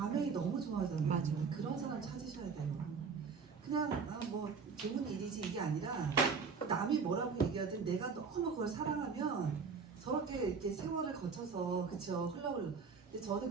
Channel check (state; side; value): quieter; left; 5.4 dB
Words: 너무 좋아하잖아요. 맞아. 그런 사람 찾으셔야 돼요. 그냥 뭐 좋은 일이지 이게 아니라 남이 뭐라고 얘기하든 내가 너무 그걸 사랑하면 저렇게 이렇게 세월을 거쳐서 그쵸 흘러올. 근데 저는